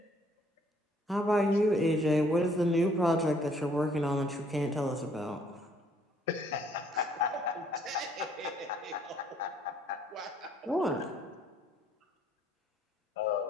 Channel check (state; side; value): normal; both; correlation 0.63